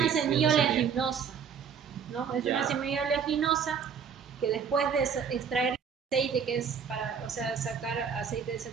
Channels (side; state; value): left; quieter; 6.8 dB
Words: sí, sí, una semilla semilla. oleaginosa, ¿no? Es una Ya, semilla oleaginosa que después de extraer el aceite, que es para, o sea, sacar aceite de